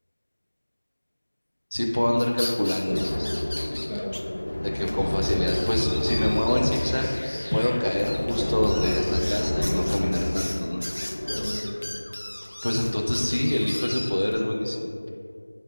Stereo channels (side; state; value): both; inverted; correlation -1.00